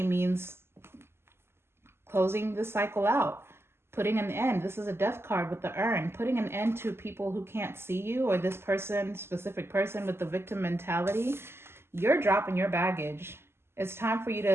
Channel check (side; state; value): left; late; 0.12 ms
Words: means closing the cycle out, putting an end. This is a death card with the urn, putting an end to people who can't see you, or this person, specific person with the victim mentality. You're dropping your baggage. It's time for you